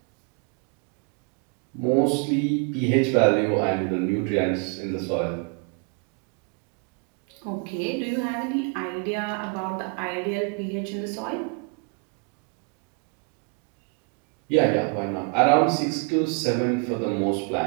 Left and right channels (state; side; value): quieter; left; 35.3 dB